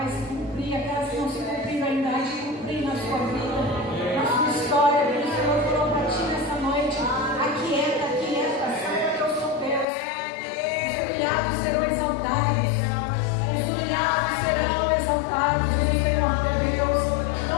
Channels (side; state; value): right; drops out; at 9.9 s